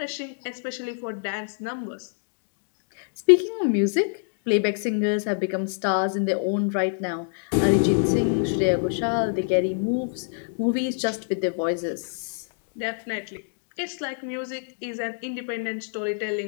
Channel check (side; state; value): right; silent; digital silence